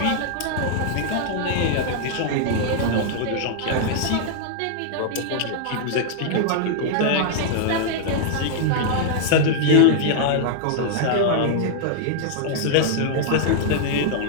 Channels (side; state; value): both; different; correlation -0.01